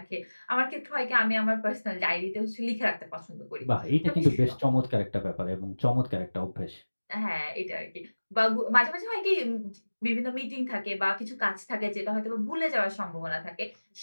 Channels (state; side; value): inverted; both; correlation -1.00